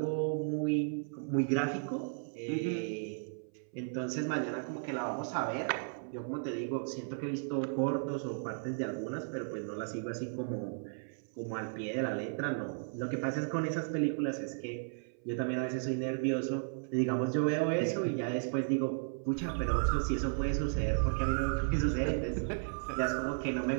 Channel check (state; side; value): silent; left; 55 dB below the other